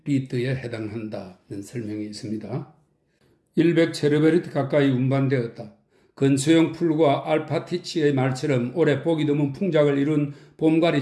해당한다는 설명이 있습니다. 100 체르베르티 가까이 운반되었다. 근소형 풀과 알파티치의 말처럼 올해 보기 드문 풍작을 이룬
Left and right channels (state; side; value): identical; both; correlation 1.00